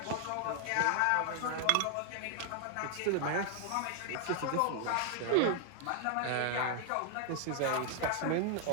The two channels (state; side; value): different; both; correlation 0.00